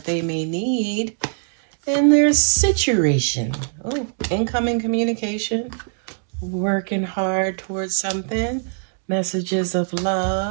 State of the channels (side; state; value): left; silent; digital silence